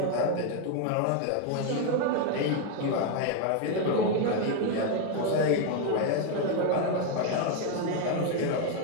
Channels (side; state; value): both; different; correlation 0.01